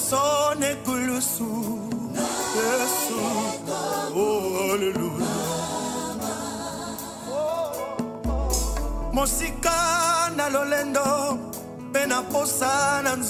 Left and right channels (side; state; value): both; identical; correlation 1.00